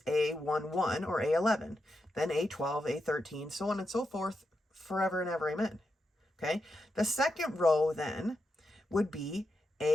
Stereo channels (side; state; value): both; normal; correlation 0.86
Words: A11 or A11, then A12, A13, so on and so forth, forever and ever, amen. Okay, the second row then would be